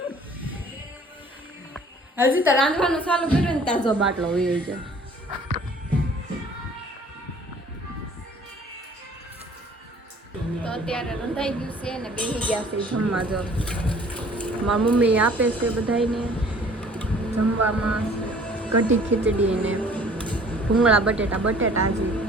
રાંધવાનું ચાલુ કર્યું ને તાજો બાટલો હોય છે. તો અત્યારે રંધાઈ ગયું છે ને બેસી ગયા છે જમવા. જો મારી મમ્મી આપે છે બધાને જમવામાં કઢી ખીચડી ને ભૂંગળા બટેટા હજી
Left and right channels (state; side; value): normal; both; correlation 0.53